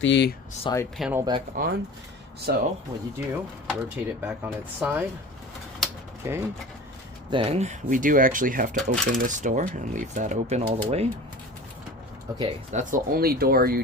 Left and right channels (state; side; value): normal; both; correlation 0.38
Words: side panel back on. So, what you do, rotate it back on its side. Okay, then we do actually have to open this door and leave that open all the way. Okay, that's the only door you